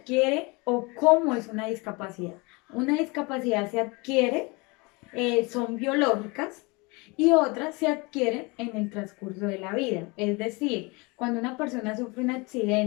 o cómo es una discapacidad? Una discapacidad se adquiere, son biológicas y otras se adquieren en el transcurso de la vida. Es decir, cuando una persona sufre un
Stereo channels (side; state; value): right; quieter; 27.1 dB